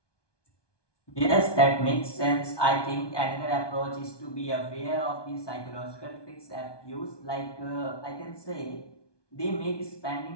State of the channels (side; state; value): right; late; 1.2 ms